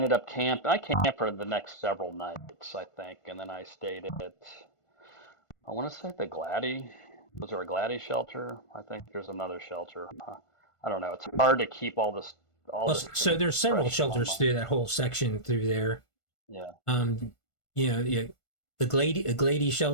up I camped for the next several nights, I think, and then I stayed at I want to say the Glady. Was there a Glady shelter? I think there's another shelter. I don't know. It's hard to keep all Well, this so there's several fresh in my shelters mind. through that whole section through there. Yeah, Um, yeah, the Glady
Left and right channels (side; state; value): right; late; 1.5 ms